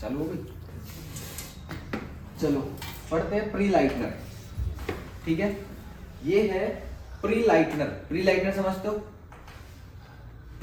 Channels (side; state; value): both; identical; correlation 1.00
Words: चालू हो गई। चलो पढ़ते हैं प्री लाइटनर। ठीक है, ये है प्री लाइटनर। प्री लाइटनर समझते हो?